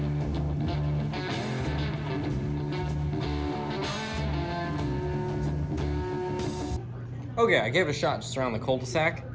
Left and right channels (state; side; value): identical; both; correlation 1.00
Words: Okay, I gave it a shot just around the cul-de-sac.